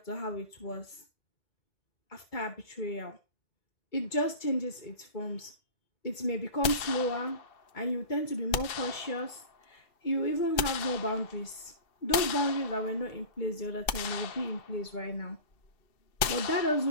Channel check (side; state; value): right; late; 2.6 ms